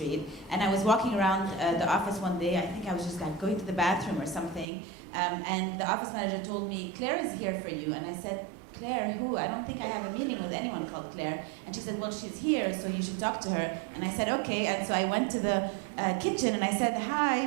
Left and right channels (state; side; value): drops out; left; at 4.7 s